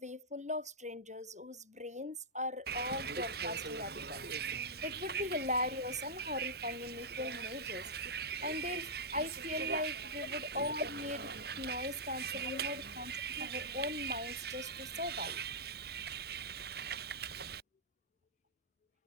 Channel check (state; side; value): normal; both; correlation -0.11